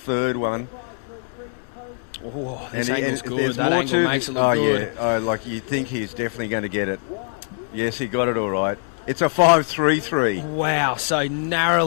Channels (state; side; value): silent; right; digital silence